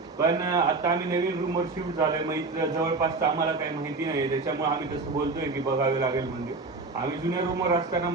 पण आता आम्ही नवीन रूमवर शिफ्ट झालोय, मग इथं जवळपास आम्हाला काही माहिती नाही, त्याच्यामुळे आम्ही तसं बोलतोय की बघावे लागेल मंदिर. आम्ही जुन्या रूमवर असताना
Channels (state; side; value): quieter; left; 3.7 dB